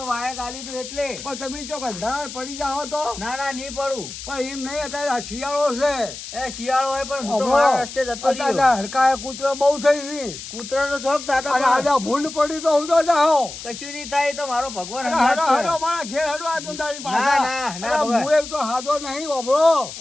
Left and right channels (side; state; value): left; noise; hiss, 11 dB below the sound